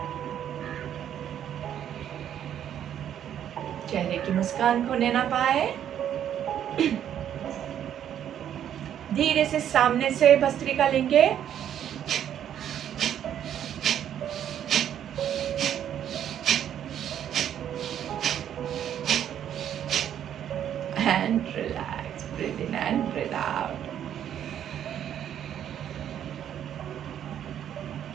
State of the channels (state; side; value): quieter; left; 10.0 dB